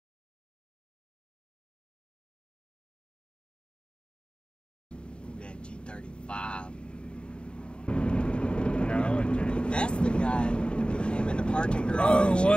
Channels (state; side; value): late; right; 0.052 ms